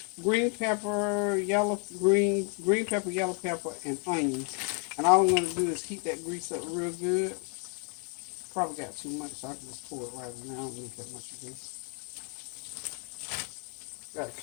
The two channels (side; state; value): right; quieter; 38.4 dB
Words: Green pepper, yellow pepper, and onions. And all I'm going to do is heat that grease up real good. Probably got too much, so I can just pour it right now. I don't need that much grease. Got